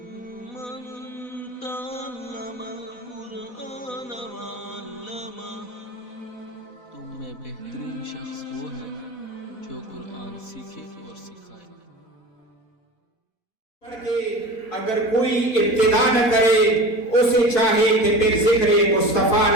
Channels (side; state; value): right; late; 4.1 ms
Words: मन तअल्लमल कुरआन व अल्लमह। तुम में बेहतरीन शख्स वो है जो कुरान सीखे और सिखाए। अगर कोई इब्तिदा न करे उसे चाहे कि फिर जिक्र मुस्तफा